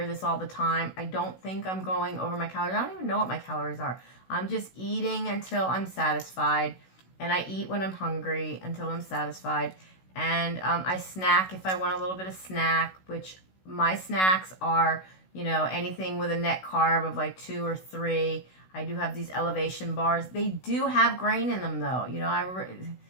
this all the time. I don't think I'm going over my calories. I don't even know what my calories are. I'm just eating until I'm satisfied. And I eat when I'm hungry until I'm satisfied. And I snack if I want a little bit of snack, which my snacks are, you know, anything with a net carb of like 2 or 3. I do have these elevation bars. They do have grain in them though. You know,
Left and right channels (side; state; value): right; late; 16 ms